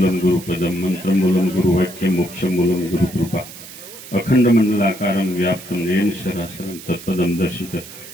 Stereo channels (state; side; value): noise; right; hiss, 15 dB below the sound